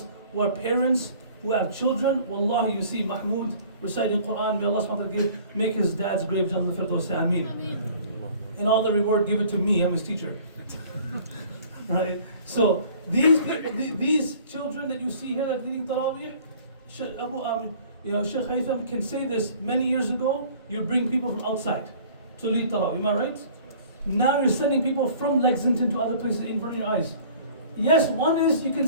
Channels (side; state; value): both; inverted; correlation -0.51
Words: who are parents, who have children, wallahi, you see Mahmoud reciting Quran, may Allah subhanahu wa ta'ala make his dad's grave Jannah al-Firdaus, Ameen. And all the reward, give it to me, I'm his teacher. Right? So these children that you see here that are leading Taraweeh, Sheikh Haytham can say this. Many years ago, you'd bring people from outside to lead Taraweeh, am I right? Now you're sending people from Lexington to other places in front of your eyes. Yes, one is you can